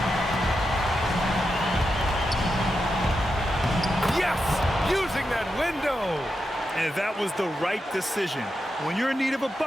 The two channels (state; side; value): normal; both; correlation 0.87